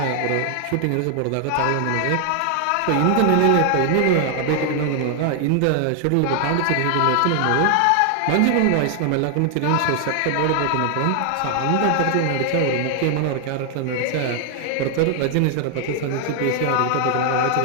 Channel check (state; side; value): different; both; correlation 0.00